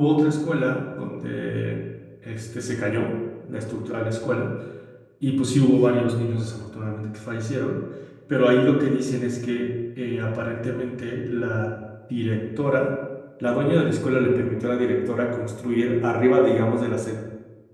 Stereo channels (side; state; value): both; identical; correlation 1.00